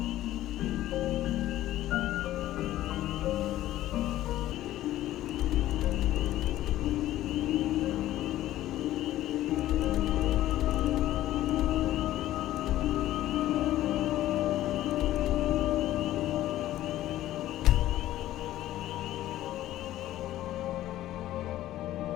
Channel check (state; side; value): quieter; right; 14.1 dB